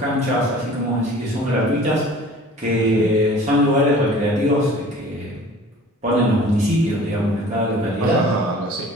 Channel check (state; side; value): normal; both; correlation 0.46